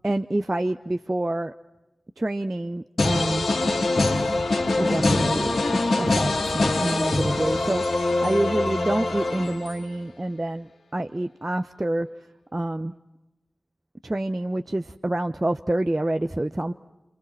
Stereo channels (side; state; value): both; normal; correlation 0.96